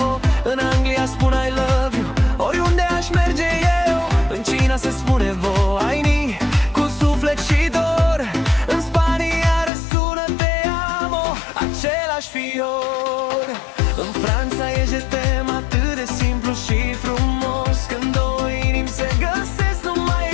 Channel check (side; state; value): right; drops out; at 9.7 s